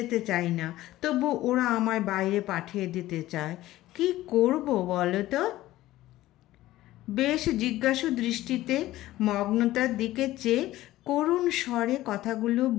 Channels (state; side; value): quieter; right; 15.8 dB